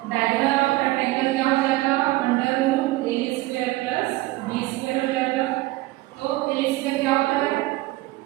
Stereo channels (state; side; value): quieter; left; 18.8 dB